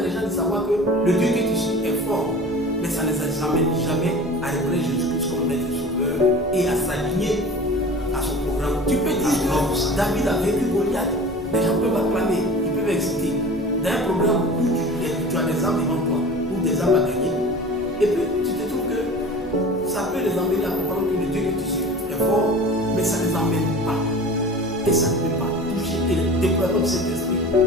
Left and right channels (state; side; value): normal; both; correlation 0.39